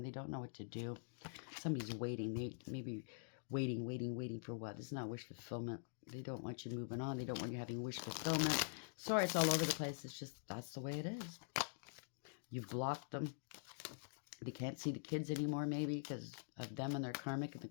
They don't know what to do. Somebody's waiting. They maybe waiting for what? This is not wish fulfillment. They don't want you moving on. They don't want you having wish fulfillment. Sorry, it's all over the place. It's just, that's the way it is. You've blocked them. They can't see the kids anymore, maybe, because of them and their karmic and the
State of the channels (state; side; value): silent; right; digital silence